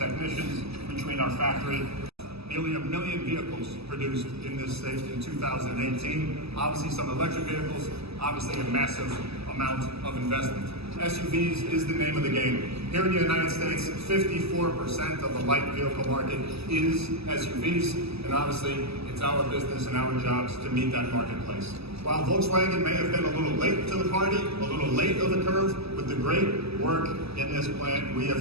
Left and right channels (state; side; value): late; left; 0.78 ms